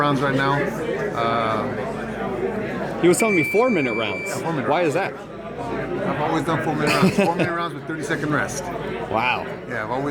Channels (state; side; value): identical; both; correlation 1.00